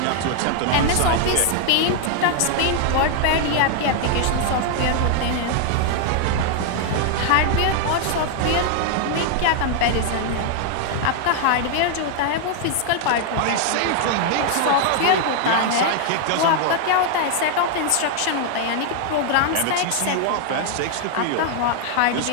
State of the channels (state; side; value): different; both; correlation 0.00